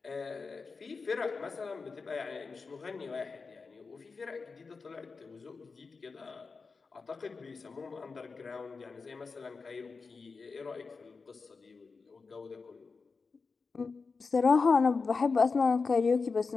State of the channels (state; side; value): quieter; right; 4.6 dB